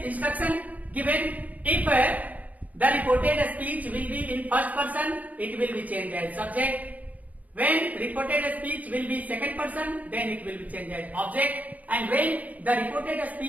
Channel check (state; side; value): late; left; 0.075 ms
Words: given. If the reported speech will be in first person, it will be changed as subject. When reported speech will be second person, then it will be changed as object. And when the reported